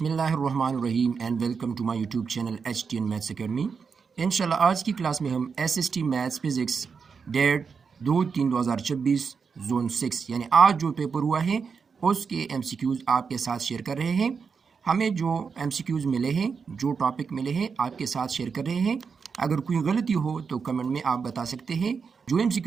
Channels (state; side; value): quieter; left; 5.7 dB